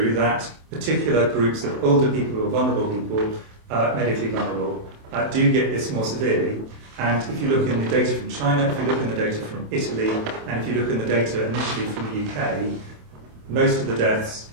that particular groups of older people or vulnerable people, medically vulnerable, do get this more severely. And if you look in the data from China, if you look in the data from Italy, and if you look in the data initially from the UK, most of the deaths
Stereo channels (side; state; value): left; late; 27 ms